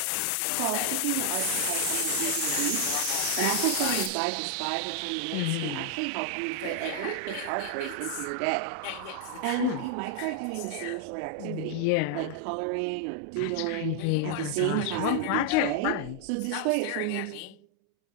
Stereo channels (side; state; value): both; different; correlation 0.00